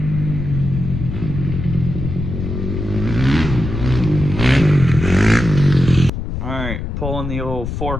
right, pulling the old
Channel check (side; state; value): left; noise; rumble, 5 dB below the sound